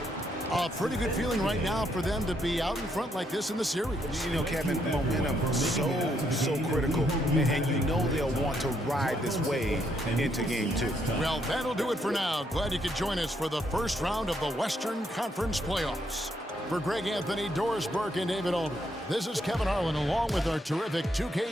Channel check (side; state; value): both; normal; correlation 0.75